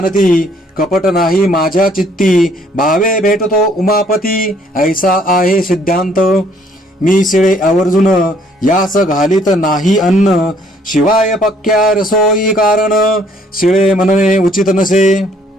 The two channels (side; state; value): both; normal; correlation 0.63